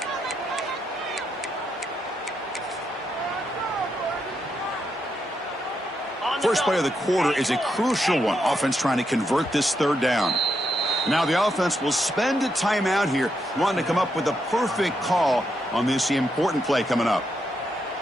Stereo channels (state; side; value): normal; both; correlation 0.81